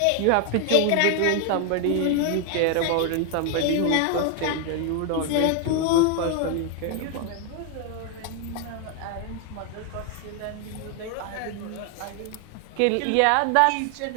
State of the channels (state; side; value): different; both; correlation 0.00